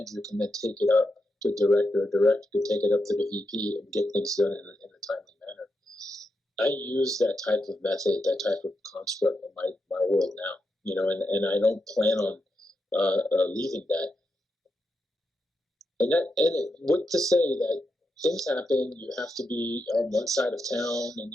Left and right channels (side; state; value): both; normal; correlation 0.86